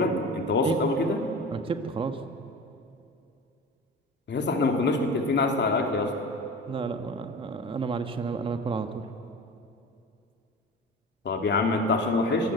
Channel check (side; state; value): both; normal; correlation 0.33